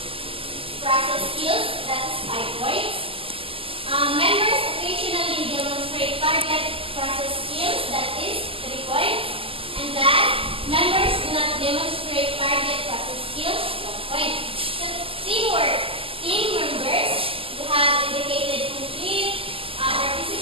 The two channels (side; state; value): left; late; 0.26 ms